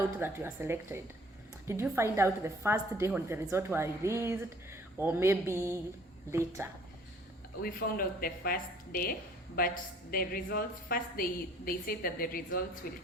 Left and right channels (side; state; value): both; normal; correlation 0.56